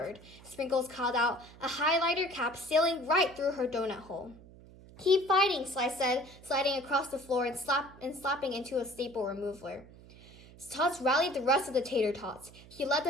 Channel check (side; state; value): right; noise; hum, 21 dB below the sound